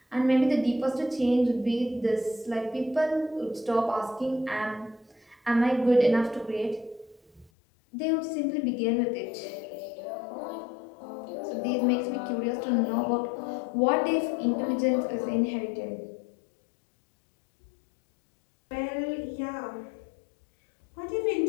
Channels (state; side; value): drops out; right; at 7.5 s